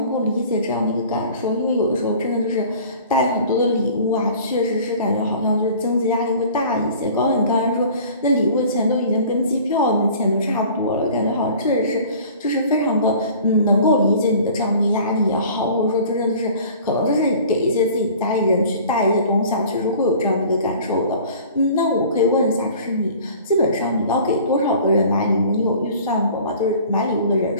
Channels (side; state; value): both; inverted; correlation -0.46